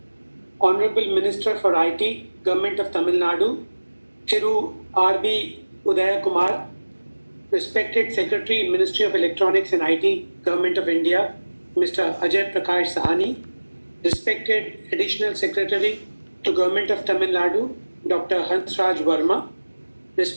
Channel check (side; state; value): both; inverted; correlation -1.00